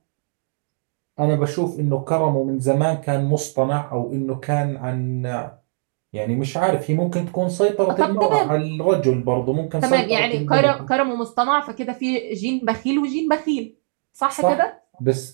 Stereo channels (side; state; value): left; silent; 59 dB below the other